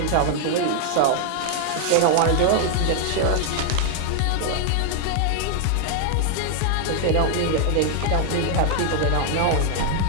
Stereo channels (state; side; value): different; both; correlation 0.00